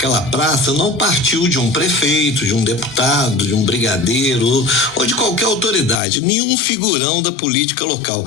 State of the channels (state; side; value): drops out; right; at 6.0 s